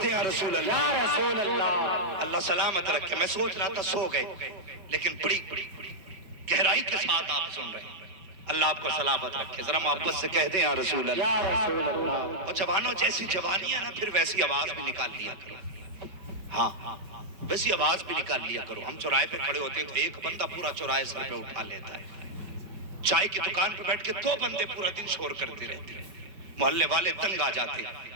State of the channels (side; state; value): left; late; 5.2 ms